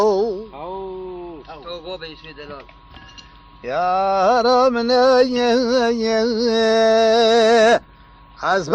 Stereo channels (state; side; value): identical; both; correlation 1.00